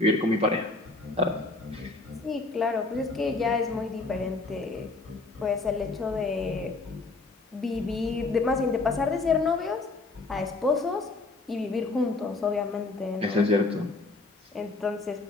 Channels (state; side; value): quieter; right; 3.4 dB